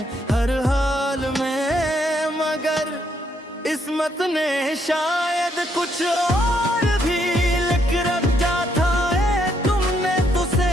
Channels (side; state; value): both; normal; correlation 0.74